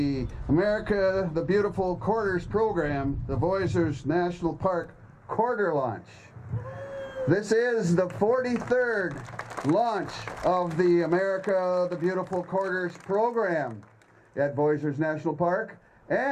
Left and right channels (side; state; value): both; identical; correlation 1.00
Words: America the Beautiful Quarters program, the Voyageurs National Park Quarter Launch. This is the 43rd launch of the America the Beautiful Quarters program at Voyageurs National Park,